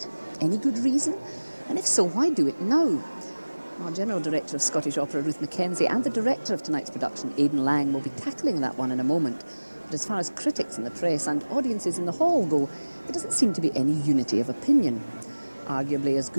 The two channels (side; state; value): both; inverted; correlation -1.00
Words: Any good reason? And if so, why do it now? Our General Director of Scottish Opera, Ruth Mackenzie, and the director of tonight's production, Aidan Lang, will be tackling that one in a moment. But as far as critics in the press and audiences in the hall go, there doesn't seem to be any unity of opinion. Arguably as